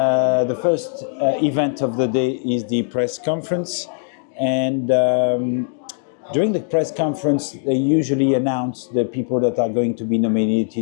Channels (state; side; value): silent; right; digital silence